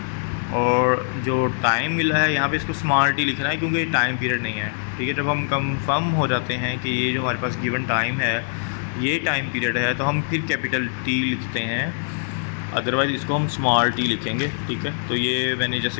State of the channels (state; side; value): silent; right; digital silence